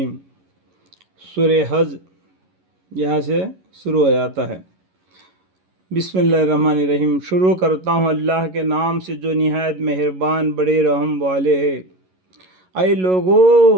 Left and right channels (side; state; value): left; late; 11 ms